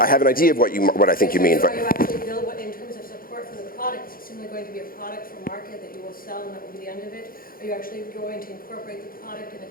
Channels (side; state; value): right; late; 0.42 ms